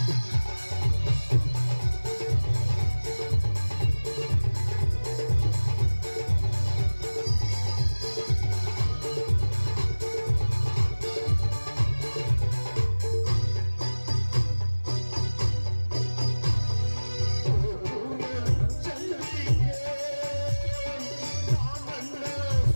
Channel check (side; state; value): both; inverted; correlation -1.00